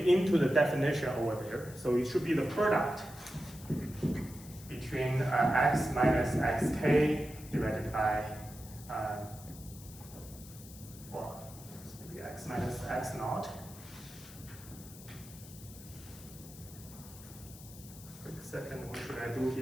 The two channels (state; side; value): noise; left; hiss, 17 dB below the sound